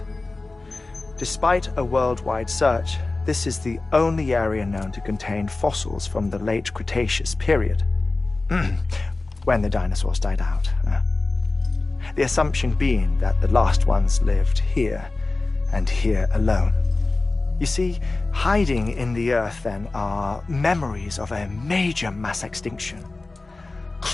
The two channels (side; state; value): right; quieter; 3.3 dB